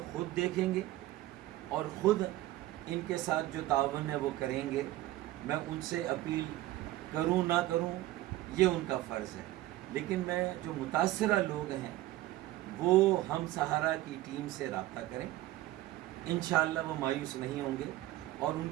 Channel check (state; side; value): quieter; left; 16.2 dB